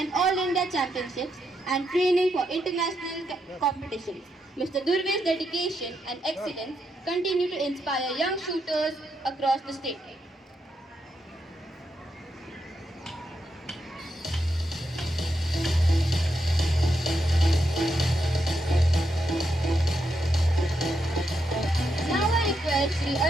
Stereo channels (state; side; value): normal; both; correlation 0.82